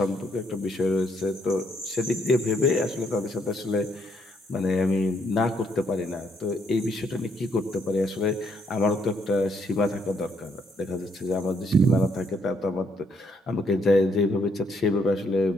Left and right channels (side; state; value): both; normal; correlation 0.71